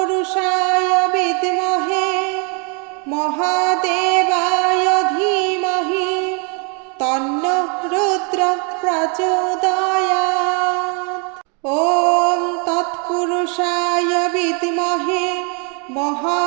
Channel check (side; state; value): left; quieter; 35.7 dB